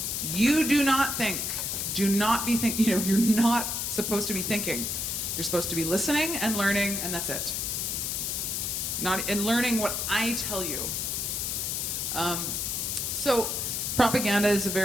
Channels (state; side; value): noise; left; hiss, 1 dB below the sound